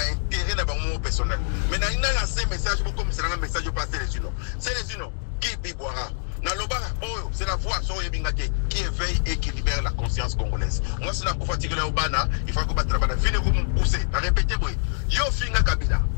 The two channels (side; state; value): right; silent; digital silence